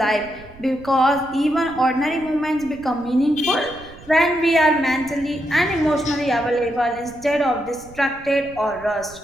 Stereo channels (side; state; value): right; noise; rumble, 21 dB below the sound